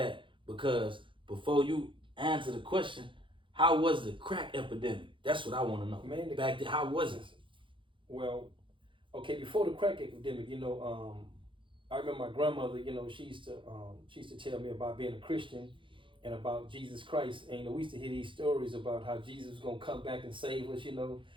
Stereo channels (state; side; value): late; left; 0.24 ms